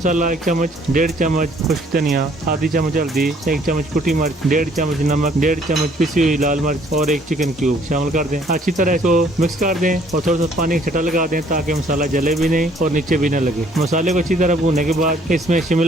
1 चम्मच, 1.5 चम्मच खुश्क धनिया, आधी चम्मच हल्दी, 1 चम्मच कुटी मिर्च, 1.5 चम्मच नमक, 1.5 चम्मच पिसी हुई लाल मिर्च और 1 चिकन क्यूब शामिल कर दें। अच्छी तरह इसको मिक्स कर दें और थोड़ा सा पानी का छटा लगा दें ताकि मसाला जले भी नहीं और नीचे भी न लगे। मसाले को अच्छी तरह भूनने के बाद इसमें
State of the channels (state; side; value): normal; both; correlation 0.61